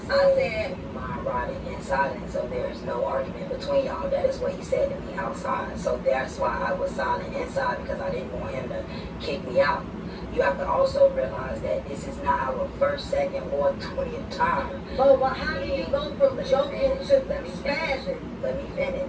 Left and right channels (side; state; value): both; identical; correlation 1.00